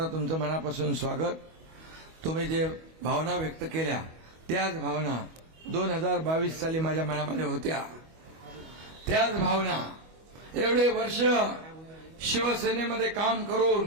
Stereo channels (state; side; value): late; left; 25 ms